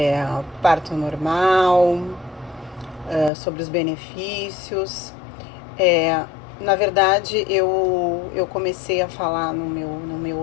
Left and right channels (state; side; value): drops out; right; at 3.3 s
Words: parto normal, sobre os benefícios. Na verdade, eu comecei a falar no meu